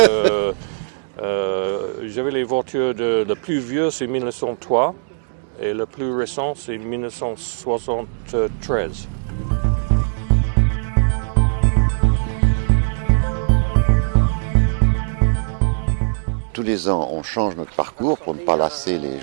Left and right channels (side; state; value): left; silent; digital silence